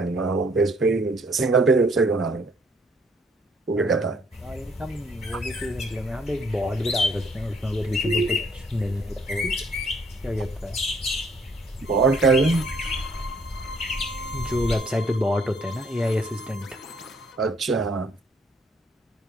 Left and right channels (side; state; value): both; normal; correlation 0.64